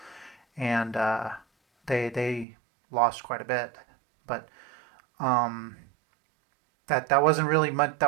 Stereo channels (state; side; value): drops out; left; at 2.5 s